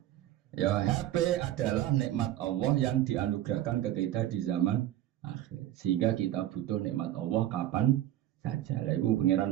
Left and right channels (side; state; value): left; quieter; 13.1 dB